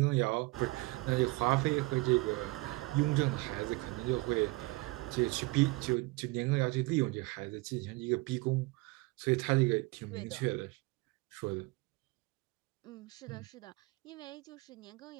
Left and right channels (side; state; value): left; quieter; 23.9 dB